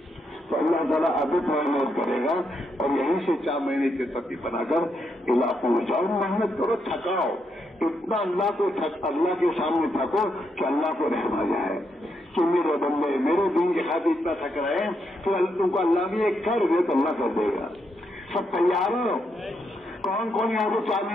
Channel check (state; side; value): normal; both; correlation 0.80